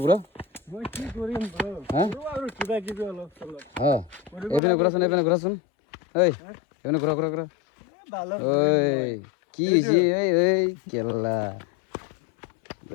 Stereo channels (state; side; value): drops out; right; at 4.6 s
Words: ব্ৰ? মই কি কৰিম ব্ৰ? আৰু কিবা কিবি অলপ চলপ এইপিনে ঘূৰাচোন, এইপিনে ঘূৰাচোন, ঐ এইপিনে ঘূৰা। ঐ কি হৈছে এই কেলা,